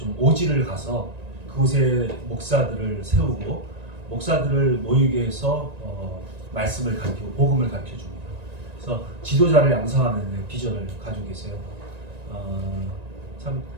오지를 가서 그곳에 목사들을 세우고 목사들을 모이게 해서 말씀을 가르치고 복음을 가르쳐 줍니다. 그래서 지도자를 양성하는 비전을 가지고 계세요. 참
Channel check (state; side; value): late; left; 1.9 ms